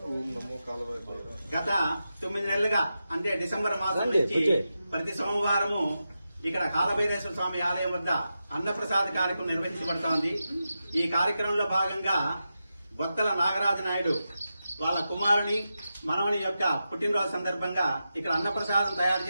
గత 9 నెలలుగా అంటే డిసెంబర్ మాసం నుంచి ప్రతి సోమవారము ఇక్కడ కాలభైరేశ్వర స్వామి ఆలయం వద్ద అన్నప్రసాద కార్యక్రమం నిర్వహించబడుతోంది. ఈ కార్యక్రమంలో భాగంగా బొత్తల నాగరాజు నాయుడు వాళ్ళ కుమారుని మనవని యొక్క పుట్టినరోజు సందర్భంగా ఇక్కడ అన్నప్రసాదం తయారు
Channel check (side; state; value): both; inverted; correlation -0.90